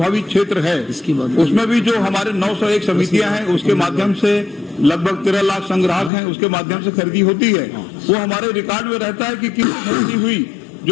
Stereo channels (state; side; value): drops out; right; at 6.1 s